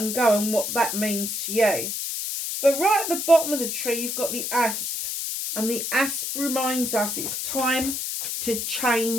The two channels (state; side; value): noise; left; hiss, 3 dB below the sound